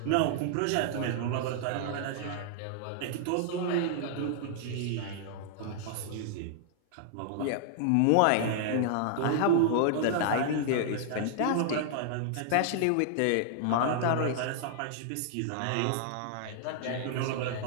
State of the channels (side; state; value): both; different; correlation -0.01